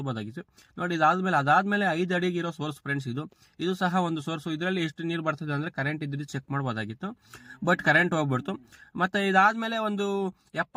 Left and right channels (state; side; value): identical; both; correlation 1.00